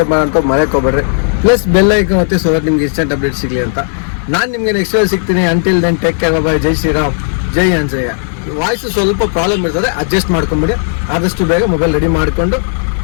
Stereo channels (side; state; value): right; silent; digital silence